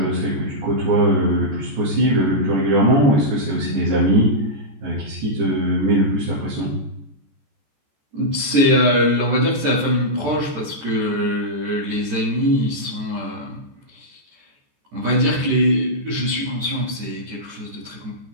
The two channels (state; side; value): late; left; 14 ms